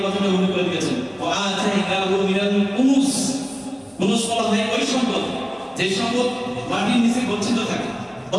কথাটা উল্লেখ করে দিয়েছেন, ওয়া আতাইনাহু মিনাল কুনুজ। কুনুজ বলা হয় ওই সম্পদ যে সম্পদ মাটির নিচে গচ্ছিত থাকে,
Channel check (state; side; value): identical; both; correlation 1.00